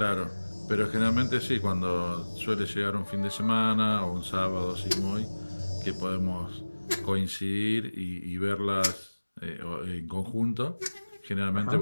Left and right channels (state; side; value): inverted; both; correlation -1.00